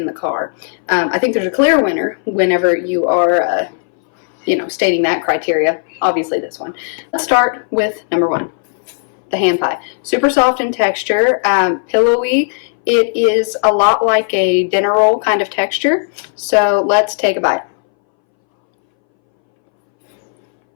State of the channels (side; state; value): right; silent; 65 dB below the other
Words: the car? I think there's a clear winner whenever you are, stating that criteria. Obviously this one. Let's start with number 1. The hand pie. Super soft in texture, pillowy. It is a lot like a dinner roll kind of texture. So let's take a bite.